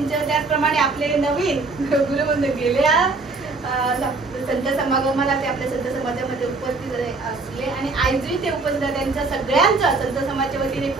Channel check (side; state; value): left; quieter; 3.7 dB